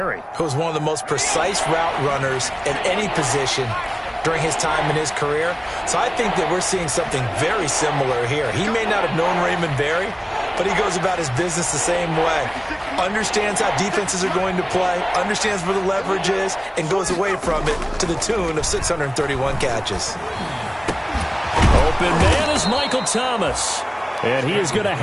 He was one of the most precise route runners at any position during his time in his career. So I think that we're seeing something very similar here. He may not have known Raymond Berry, but he goes about his business the same way. Understands how defenses are going to play, understands where the leverage is, and goes away from it to the tune of 631 catches. Open man is Michael Thomas. And he is going to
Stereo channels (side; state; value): both; identical; correlation 1.00